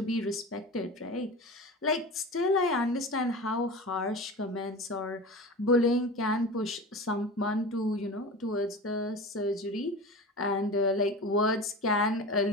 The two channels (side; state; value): both; normal; correlation 0.31